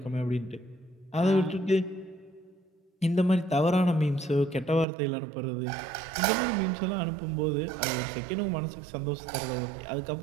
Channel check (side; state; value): left; drops out; at 4.9 s